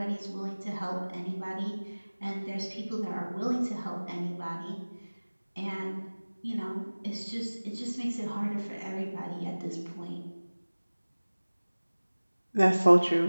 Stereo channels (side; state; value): both; inverted; correlation -1.00